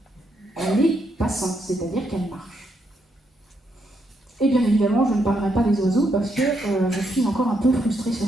elle est passante, c'est-à-dire qu'elle marche. Et bien évidemment, je ne parlerai pas des oiseaux parce que je suis encore un peu frustrée sur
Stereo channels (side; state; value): both; normal; correlation 0.78